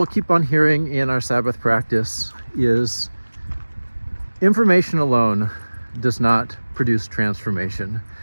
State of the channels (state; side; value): inverted; both; correlation -1.00